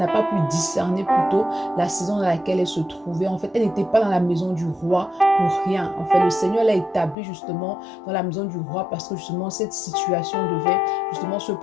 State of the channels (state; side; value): drops out; right; at 7.2 s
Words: pas pu discerner plutôt la saison dans laquelle elle se trouvait. En fait, elle n'était pas dans la maison du roi pour rien. En fait, le Seigneur l'a établie justement dans la maison du roi parce que justement cette situation devait justement se